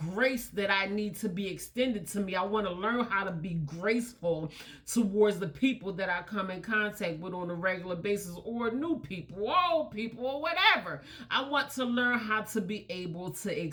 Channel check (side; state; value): both; identical; correlation 1.00